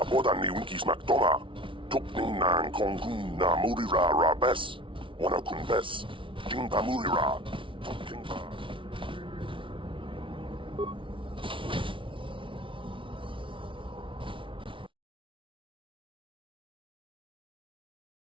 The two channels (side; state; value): left; late; 0.25 ms